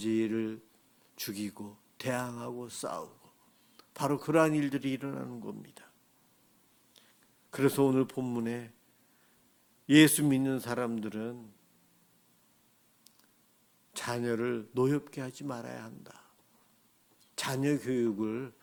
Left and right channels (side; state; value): both; identical; correlation 1.00